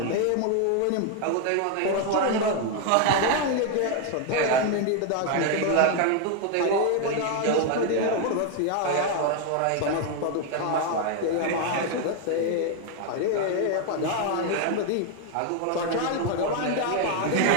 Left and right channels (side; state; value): both; different; correlation 0.01